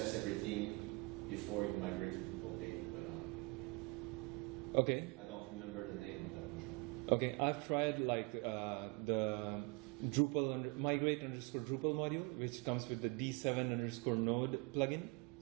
everything before you migrate to Drupal 8, but okay. I don't remember the name of that module. Okay, I've tried like the Drupal migrate _ Drupal module, which comes with the D7 _ node plugin,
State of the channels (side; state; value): left; quieter; 27.3 dB